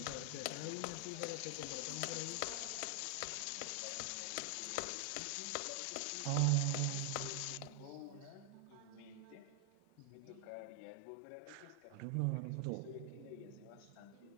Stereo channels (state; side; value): different; both; correlation 0.00